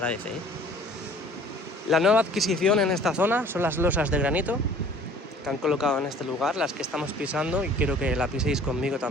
¿eh? La nueva adquisición en esta zona son las losas de granito que han colocado en este lugar, las que estamos pisando, y quiero que la piséis conmigo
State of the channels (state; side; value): normal; both; correlation 0.51